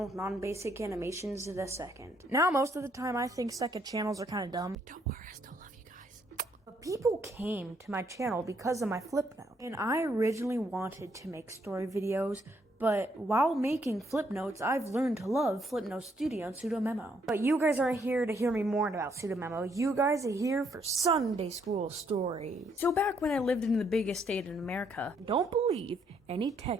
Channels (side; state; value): both; normal; correlation 0.71